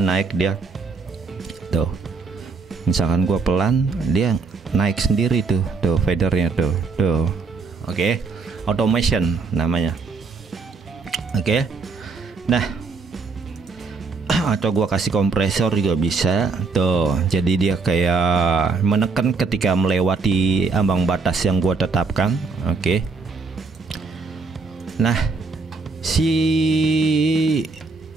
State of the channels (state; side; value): quieter; left; 4.3 dB